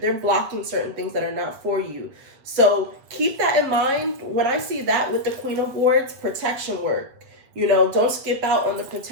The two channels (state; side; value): late; left; 7.8 ms